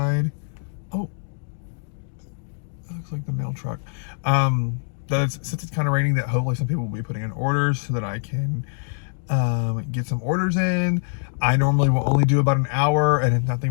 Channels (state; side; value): silent; right; digital silence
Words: oh, that looks like the mail truck. Since it's kind of raining, that hopefully some people will be putting in orders so that I can get some orders in. I normally will only do about an hour, and if nothing